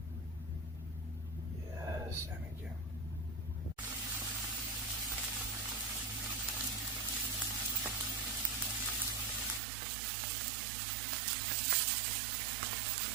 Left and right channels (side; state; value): left; drops out; at 9.6 s